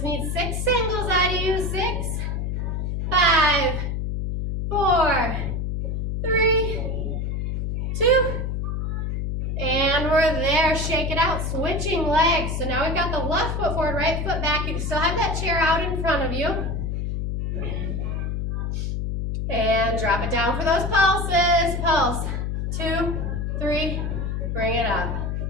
need 6 singles out of you. 6, 5, 4, 3, 2, and we're there. Shake it out. Switching legs. So now we've got the left foot forward, right foot back. You can still have that chair out in front of you. And drop it down for those pulses. Pulse. 2, 3, bring it up.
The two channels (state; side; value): noise; left; hum, 1 dB below the sound